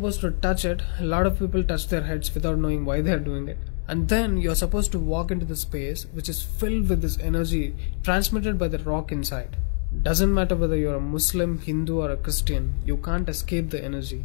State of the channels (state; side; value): silent; right; 62 dB below the other